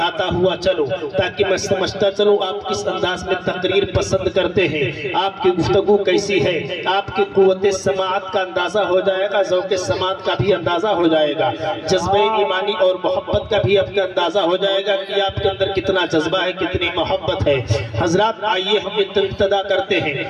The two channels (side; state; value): both; identical; correlation 1.00